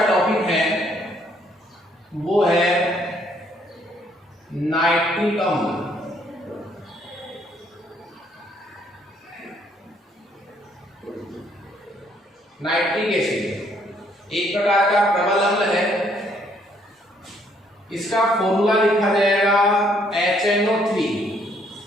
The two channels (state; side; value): normal; both; correlation 0.67